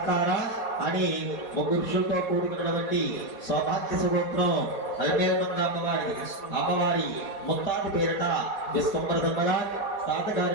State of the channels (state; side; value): late; right; 4.2 ms